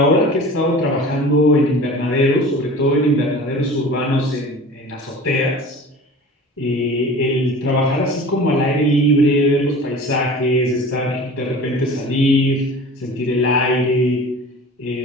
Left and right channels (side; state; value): both; normal; correlation 0.39